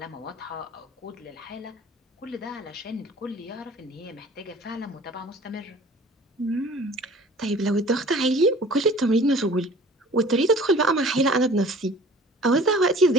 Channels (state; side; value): normal; both; correlation 0.48